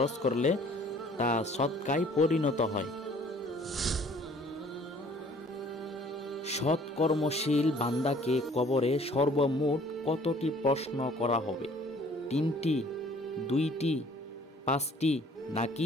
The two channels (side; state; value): both; normal; correlation 0.55